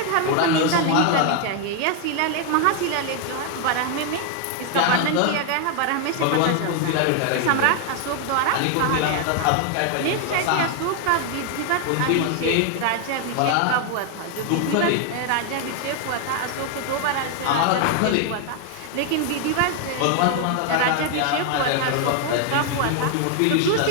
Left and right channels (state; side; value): different; both; correlation 0.00